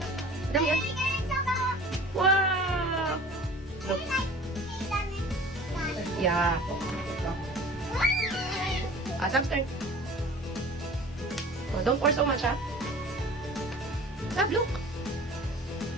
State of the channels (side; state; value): both; normal; correlation 0.43